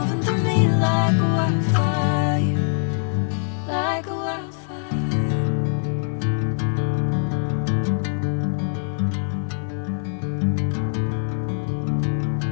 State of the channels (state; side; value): silent; right; digital silence